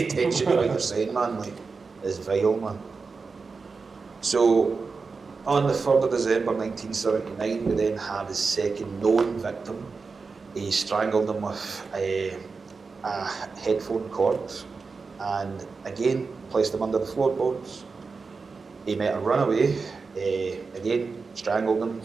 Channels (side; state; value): left; quieter; 4.6 dB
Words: attention to what you're saying, man. Like, it's vile, man. So on the 3rd of December 1979, we then have his second known victim. He strangled him with a headphone cord and again placed him under the floorboards. He met a runaway, again strangled him,